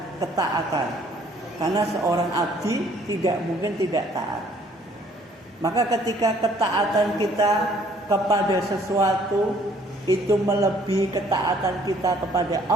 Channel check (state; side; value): normal; both; correlation 0.60